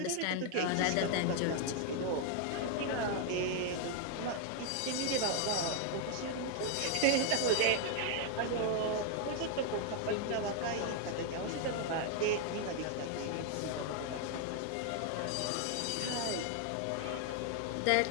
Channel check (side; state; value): both; different; correlation 0.00